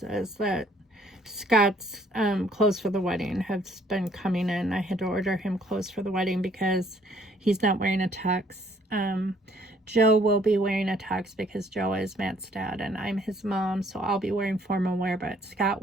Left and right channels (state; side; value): normal; both; correlation 0.63